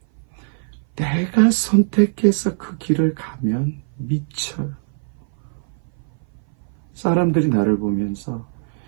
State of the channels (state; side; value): silent; left; 58 dB below the other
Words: 내가 선택해서 그 길을 가면 미쳐요. 사람들이 나를 보면서